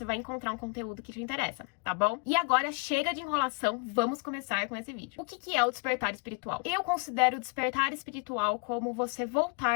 vai encontrar um conteúdo que te interessa, tá bom? E agora, chega de enrolação, vamos começar com esse vídeo. O que é o despertar espiritual? Eu considero o despertar espiritual como você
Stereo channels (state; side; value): quieter; right; 33.7 dB